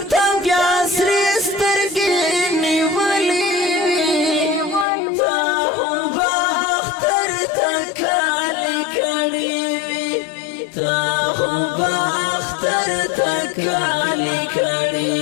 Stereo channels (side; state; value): right; drops out; at 4.9 s